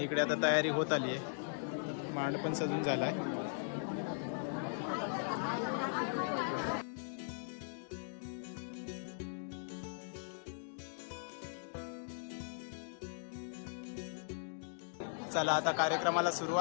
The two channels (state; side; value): silent; right; digital silence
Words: इकडे आता तयारी होत आली आहे. मांड पण सजून झालाय. चला आता कार्यक्रमाला